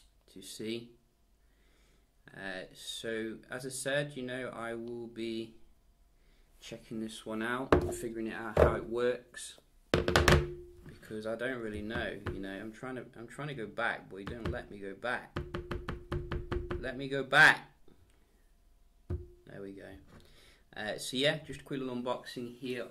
to see. So as I said, you know, I will be checking this one out, figuring it out how it works, because I don't really know. You know, I'm trying to go back, but you don't let me go back. Let me go back. There we go. So yeah, just a quick little unboxing here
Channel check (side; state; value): both; identical; correlation 1.00